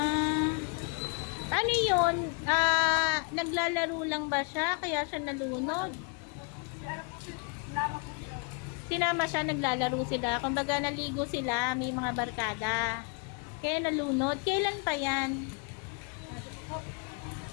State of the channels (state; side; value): quieter; right; 34.1 dB